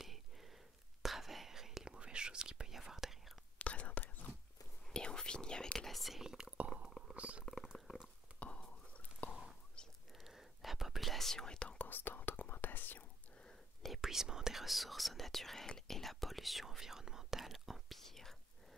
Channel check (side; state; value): both; normal; correlation 0.65